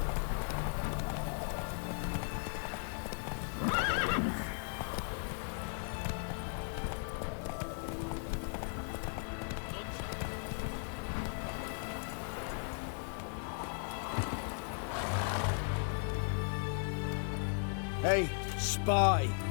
None shall pass. Hey, spy.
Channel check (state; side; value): silent; right; 53 dB below the other